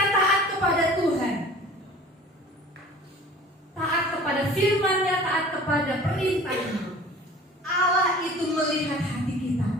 taat kepada Tuhan, taat kepada firman-Nya, taat kepada perintahnya, Allah itu melihat hati kita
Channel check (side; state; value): both; normal; correlation 0.44